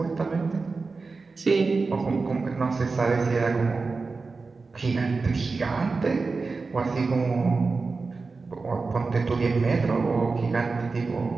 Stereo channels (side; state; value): left; quieter; 4.1 dB